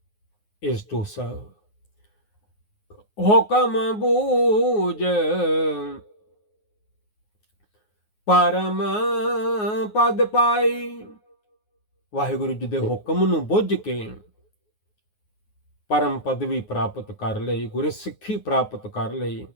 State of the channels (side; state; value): right; late; 9.5 ms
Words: is to serve. ਹੁਕਮ ਬੂਝ ਪਰਮ ਪਦ ਪਾਈ। ਵਾਹਿਗੁਰੂ ਜੀ ਦੇ ਹੁਕਮ ਨੂੰ ਬੁੱਝ ਕੇ ਪਰਮ ਪਦਵੀ ਪ੍ਰਾਪਤ ਕਰ ਲਈ, ਗੁਰਸਿੱਖੀ ਪ੍ਰਾਪਤ ਕਰ ਲਈ,